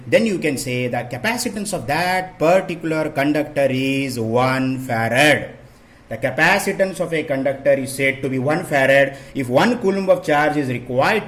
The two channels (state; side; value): identical; both; correlation 1.00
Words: Then you can say the capacitance of that particular conductor is 1 farad. The capacitance of a conductor is said to be 1 farad if 1 coulomb of charge is required